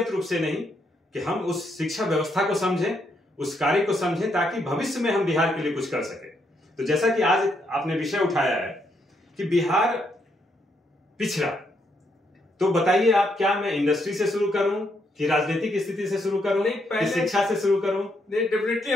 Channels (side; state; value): both; normal; correlation 0.76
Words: रूप से नहीं, कि हम उस शिक्षा व्यवस्था को समझें, उस कार्य को समझें, ताकि भविष्य में हम बिहार के लिए कुछ कर सके। तो जैसा कि आज आपने विषय उठाया है कि बिहार पिछड़ा, तो बताइए आप, क्या मैं इंडस्ट्री से शुरू करूं कि राजनीतिक स्थिति से शुरू करूं, कि शिक्षा से शुरू करूं? नहीं, डेफिनेटली